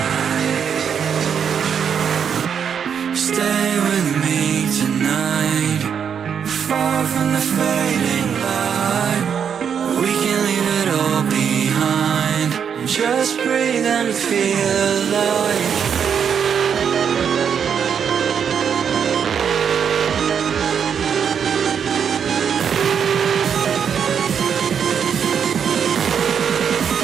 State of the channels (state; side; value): quieter; left; 7.5 dB